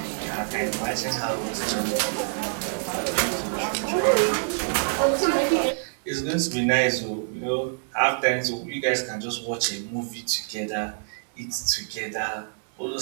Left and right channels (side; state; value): left; silent; digital silence